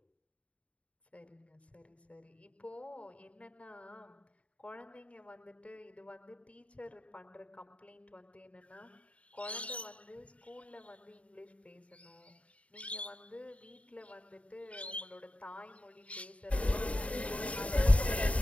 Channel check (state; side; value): late; right; 0.064 ms